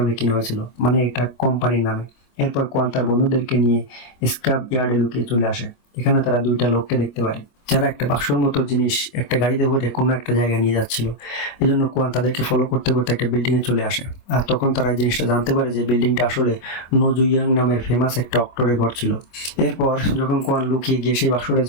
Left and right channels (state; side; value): late; right; 25 ms